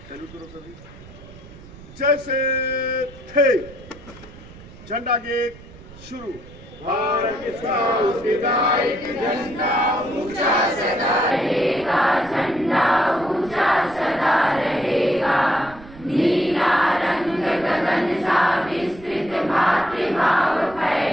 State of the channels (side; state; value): right; noise; rumble, 19 dB below the sound